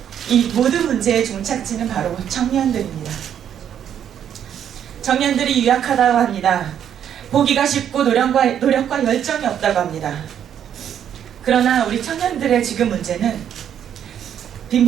이 모든 문제의 종착지는 바로 청년들입니다. 청년들이 유약하다고 합니다. 보기가 쉽고 노력과 열정이 없다고 합니다. 그러나 우리 청년들의 지금 문제는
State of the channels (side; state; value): left; quieter; 9.4 dB